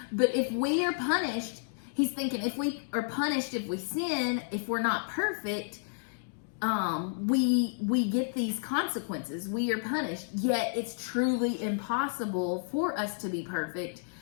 But if we are punished, he's thinking if we are punished, if we sin, if we're not perfect, we get these consequences. We are punished. Yet it's truly impossible for us to be perfect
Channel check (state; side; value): silent; right; digital silence